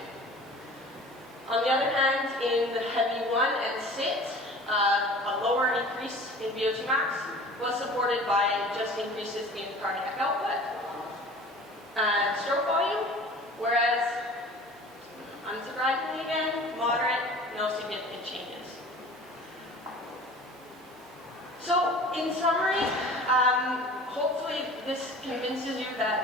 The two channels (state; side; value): normal; both; correlation 0.43